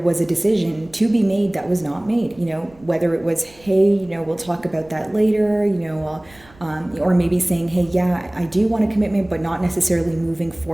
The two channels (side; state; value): right; noise; rumble, 27 dB below the sound